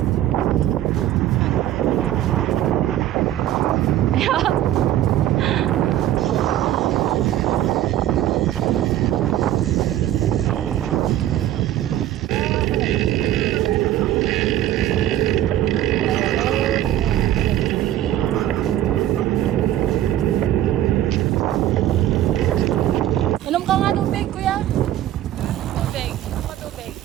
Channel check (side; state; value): left; quieter; 12.7 dB